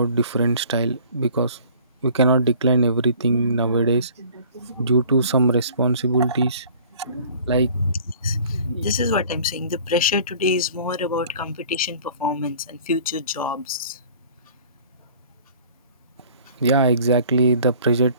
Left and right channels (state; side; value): inverted; both; correlation -0.50